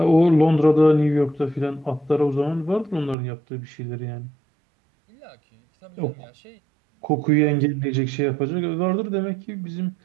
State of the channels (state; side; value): drops out; left; at 3.2 s